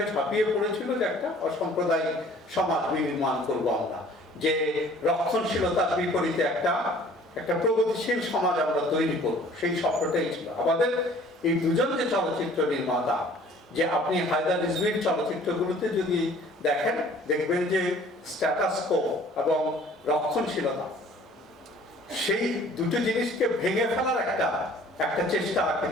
ঝাঁপিয়ে পড়েছিল যে একটা অসাম্প্রদায়িক সমাজ নির্মাণ করব আমরা, যে রক্ষণশীলতার বিপরীতে একটা প্রগতিশীল সমাজ আমরা তৈরি করব, সেই স্বপ্নটাই ছিল আমাদের। এই দুজন যে চলচ্চিত্র নির্মাতা, যে আপনি হায়দার রিজভীর চলচ্চিত্রগুলোতে যদি দেখেন, দেখবেন যে স্ট্যাটাস কো এবং রক্ষণশীলতা, সেই দুটো জিনিসকে ভেঙে ফেলার একটা চেষ্টা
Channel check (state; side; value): normal; both; correlation 0.52